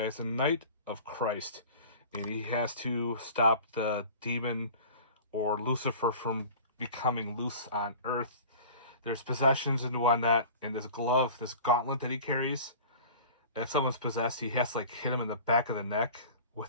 a knight of Christ, and he has to stop the demon or Lucifer from becoming loose on Earth. There's possessions and whatnot, and this glove, this gauntlet that he carries. And if someone's possessed, he has to like hit him in the back of the neck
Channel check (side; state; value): both; inverted; correlation -0.41